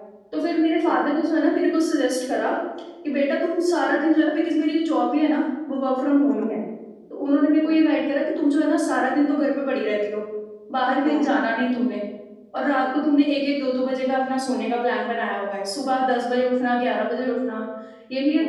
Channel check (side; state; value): both; identical; correlation 1.00